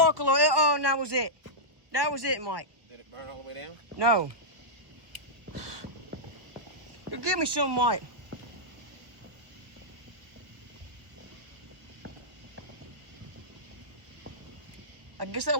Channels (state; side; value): late; left; 1.1 ms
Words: Oh, and that was it. That was it, Mike. Did it burn all the way down? No. You give me some, Mike. I guess that